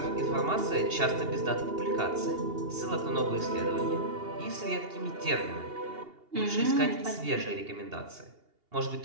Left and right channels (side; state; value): left; late; 2.8 ms